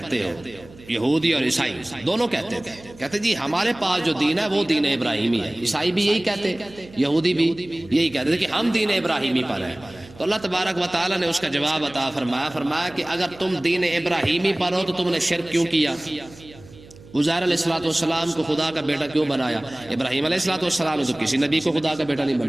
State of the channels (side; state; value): right; noise; hum, 21 dB below the sound